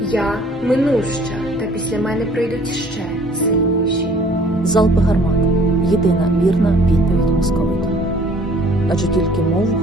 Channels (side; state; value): both; normal; correlation 0.55